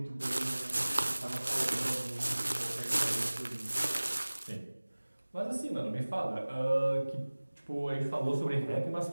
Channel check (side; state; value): both; inverted; correlation -1.00